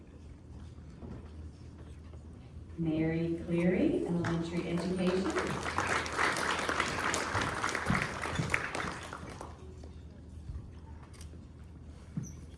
Mary Cleary, elementary education.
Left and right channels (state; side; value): identical; both; correlation 1.00